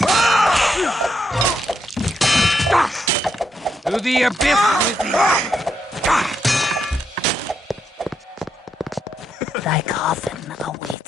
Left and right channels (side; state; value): both; normal; correlation 0.80